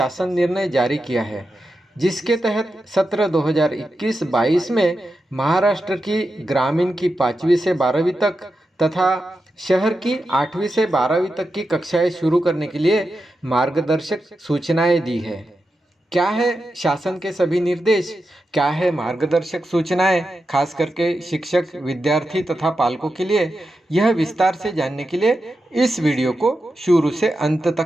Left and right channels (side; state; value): both; normal; correlation 0.89